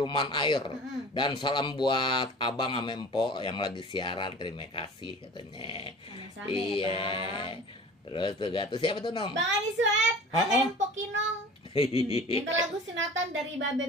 Air, dan salam buat Abang Mempo yang lagi siaran. Terima kasih katanya. Sama-sama, iya. Terus tuh siapa tuh Nong? Bang Andi Sueb, Mempo Kinong. Minta lagu sunatan dari Babe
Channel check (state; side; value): normal; both; correlation 0.41